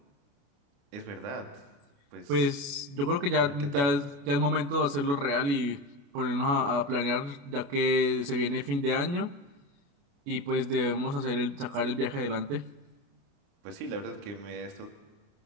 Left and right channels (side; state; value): left; late; 28 ms